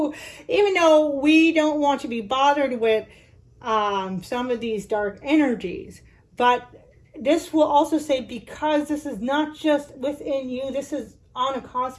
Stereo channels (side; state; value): both; identical; correlation 1.00